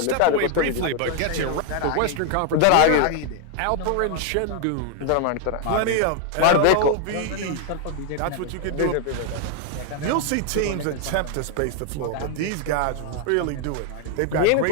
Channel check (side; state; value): both; different; correlation 0.00